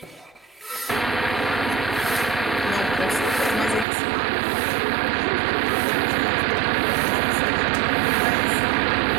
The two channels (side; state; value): left; drops out; at 3.9 s